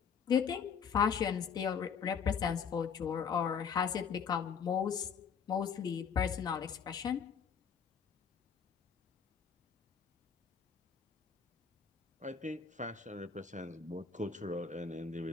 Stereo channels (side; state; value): right; quieter; 6.6 dB